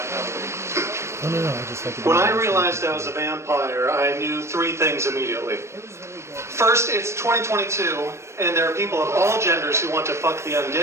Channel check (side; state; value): left; late; 0.13 ms